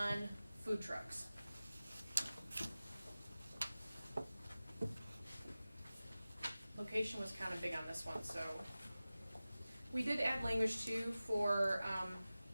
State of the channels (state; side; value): inverted; both; correlation -0.96